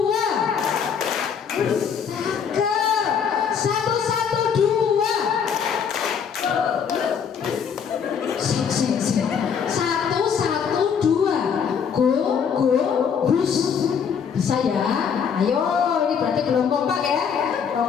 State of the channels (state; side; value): quieter; right; 7.0 dB